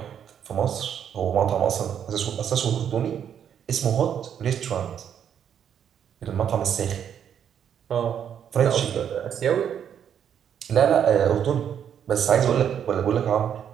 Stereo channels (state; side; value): quieter; left; 8.7 dB